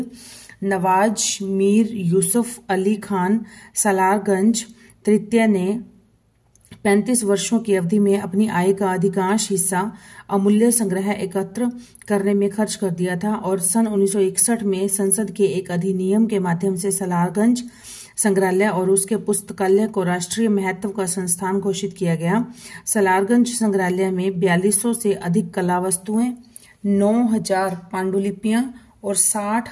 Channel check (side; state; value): both; identical; correlation 1.00